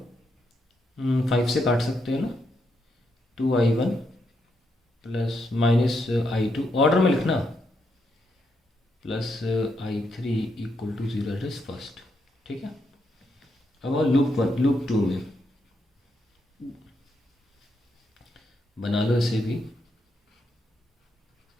5 से काट सकते हैं ना, 2I1 plus minus I2, order में लिखना, plus I3 equal to 0, it is first. ठीक है, अब लूप 2 में बना लो इसे भी।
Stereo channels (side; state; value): both; normal; correlation 0.79